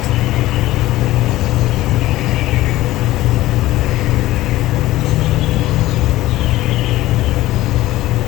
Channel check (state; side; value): quieter; right; 16.3 dB